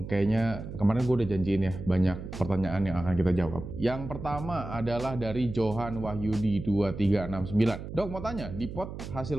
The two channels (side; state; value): right; noise; hum, 9 dB below the sound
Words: kayaknya kemarin gue udah janjiin ya, banyak pertanyaan yang akan kita jawab. Yang pertama adalah dari Johan Wahyudi 2369. Dok, mau tanya, di pot